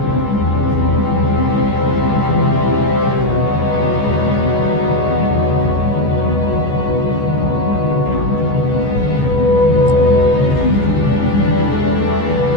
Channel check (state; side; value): late; right; 14 ms